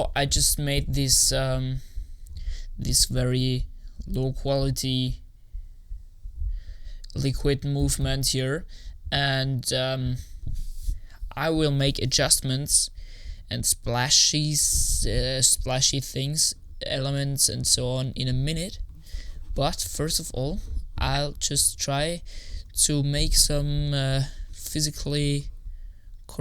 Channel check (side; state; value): both; identical; correlation 1.00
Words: I just made this this very low quality liquid movement here, and I will make adjustments and splashy things, elements and so on in a minute. But first of all, I'll just try to make some physically